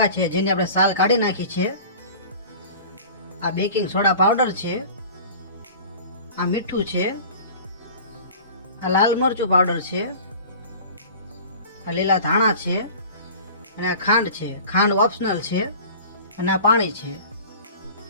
છે જેની આપણે સાલ કાઢી નાખી છે, આ બેકિંગ સોડા પાવડર છે, આ મીઠું છે, આ લાલ મરચું પાવડર છે, આ લીલા ધાણા છે, અને આ ખાંડ છે। ખાંડ ઓપ્શનલ છે, અને આ પાણી છે।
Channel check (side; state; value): both; inverted; correlation -0.41